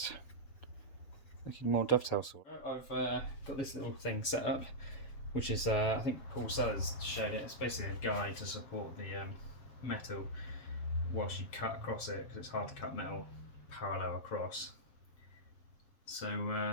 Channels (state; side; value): late; right; 7.3 ms